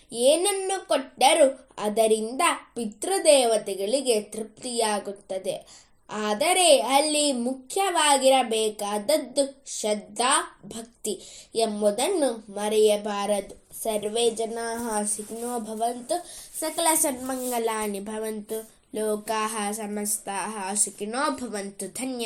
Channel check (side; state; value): both; identical; correlation 1.00